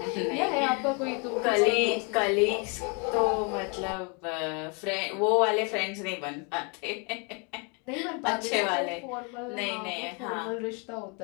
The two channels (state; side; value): quieter; right; 34.0 dB